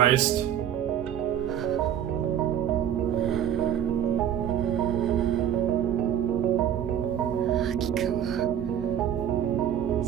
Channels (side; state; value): left; quieter; 10.0 dB